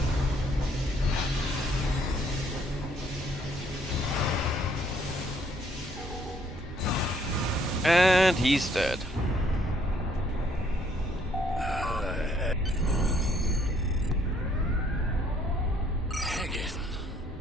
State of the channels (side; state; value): both; normal; correlation 0.66